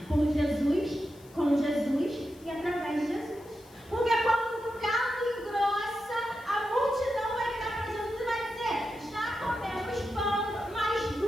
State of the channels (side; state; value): left; noise; hiss, 26 dB below the sound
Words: por Jesus, com Jesus e através de Jesus. Porque quando o caldo engrossa, a multidão vai virar para Jesus e vai dizer: já comemos pão, mas